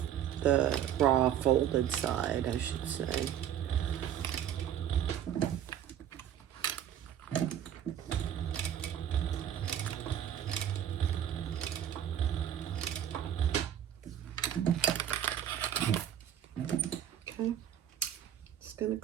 raw folded side, I should say. Okay, just gonna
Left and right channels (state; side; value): quieter; left; 10.2 dB